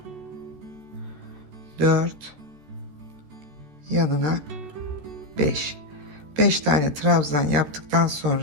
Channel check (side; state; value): left; late; 13 ms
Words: 4, yanına 5. 5 tane trabzan yaptıktan